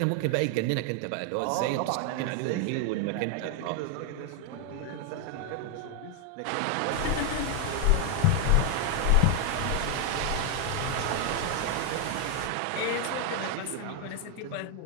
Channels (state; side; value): different; both; correlation 0.00